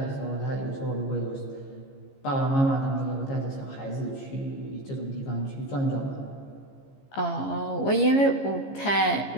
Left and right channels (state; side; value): late; right; 15 ms